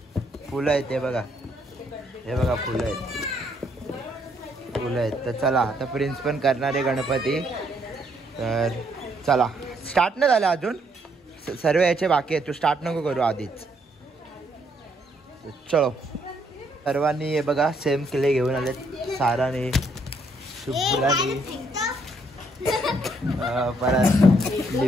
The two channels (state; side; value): normal; both; correlation 0.71